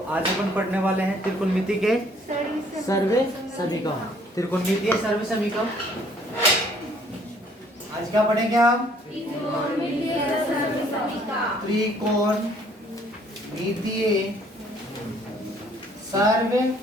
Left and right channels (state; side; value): normal; both; correlation 0.61